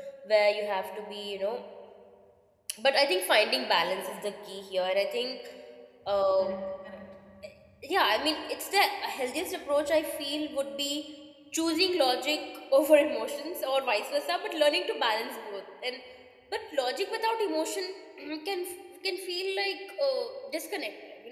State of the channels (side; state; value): both; identical; correlation 1.00